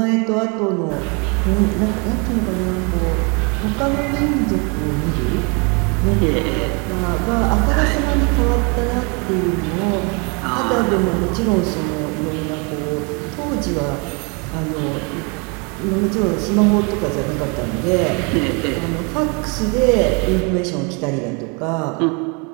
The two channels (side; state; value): left; quieter; 32.9 dB